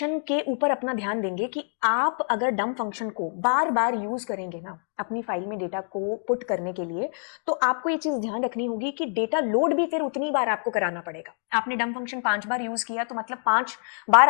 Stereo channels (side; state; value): right; silent; 55 dB below the other